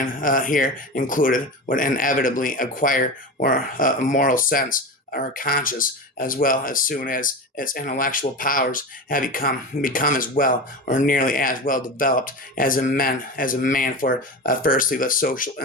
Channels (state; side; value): normal; both; correlation 0.26